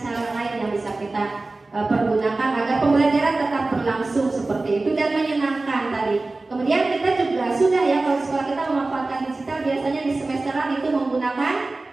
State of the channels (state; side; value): quieter; left; 3.3 dB